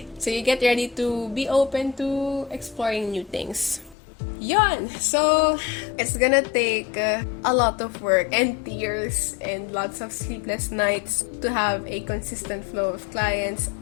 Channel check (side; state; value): right; drops out; at 4.0 s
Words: So you get ready to be open to exploring new things. Yon! So, it's gonna take a lot of work and tears and lots of sleepless nights to have a consistent flow of clients.